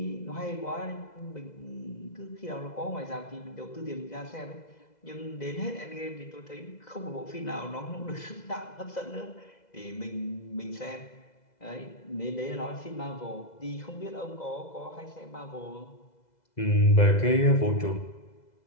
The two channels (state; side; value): late; right; 2.0 ms